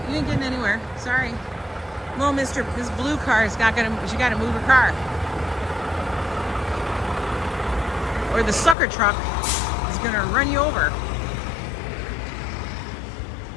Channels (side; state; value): right; drops out; at 8.8 s